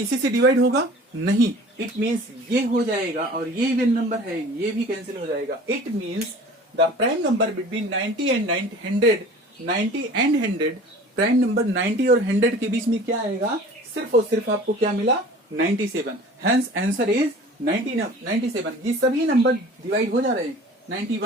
से डिवाइड होगा नहीं, इट मींस ये हो जाएगा, और ये इवन नंबर है, ये भी कैंसिल हो जाएगा। It means the prime number between 90 and 100, prime number 90 और 100 के बीच में क्या आएगा? सिर्फ और सिर्फ आपको क्या मिला? 97। Hence answer is 97। ये सभी नंबर डिवाइड हो जा रहे हैं।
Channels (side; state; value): both; normal; correlation 0.44